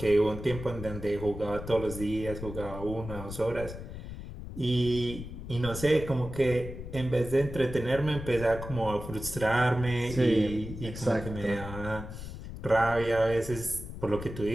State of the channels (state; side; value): noise; left; rumble, 10 dB below the sound